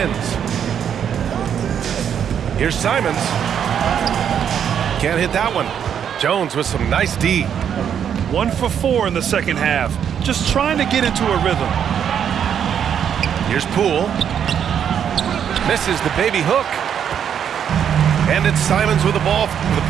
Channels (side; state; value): left; quieter; 8.5 dB